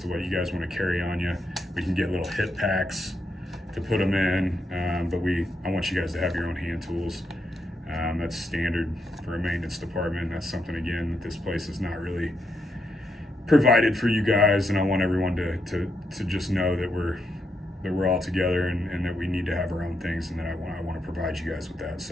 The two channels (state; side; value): normal; both; correlation 0.81